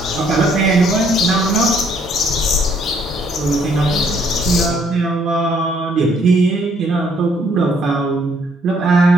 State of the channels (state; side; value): normal; both; correlation 0.66